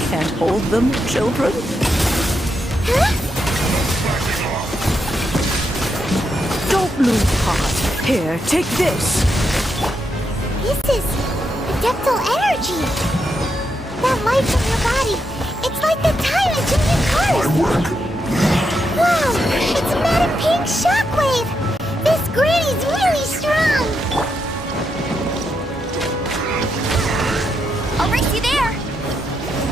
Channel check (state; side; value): normal; both; correlation 0.82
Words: hold them, children? Don't lose heart. Here, take this. This is adeptal energy! That light from your body, it's like the time engine in cars! My work! Wow! It's Madam Pink's shockwave! This granny's really strong! I'll race you there!